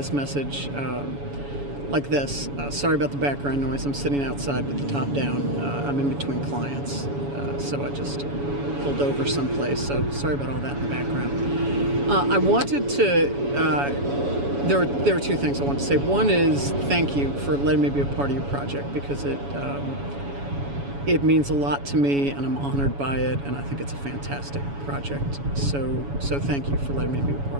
message like this. Sorry about the background noise. I'm sitting outside with the top down. I'm in between clients, so I just pulled over someplace. So sorry about all that in the background. I wanted to, there were two things I wanted to say. One is thank you for letting me be a part of your project, because it means a lot to me, and I'm honored by it, and I think it's a fantastic project. So thank you for letting me be a part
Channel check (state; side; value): late; left; 7.1 ms